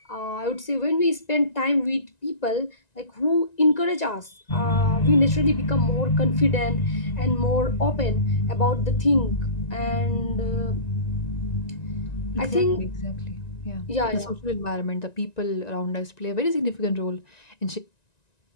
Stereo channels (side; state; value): right; late; 1.9 ms